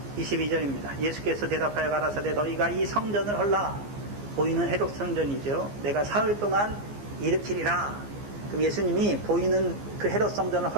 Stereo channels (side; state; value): left; late; 15 ms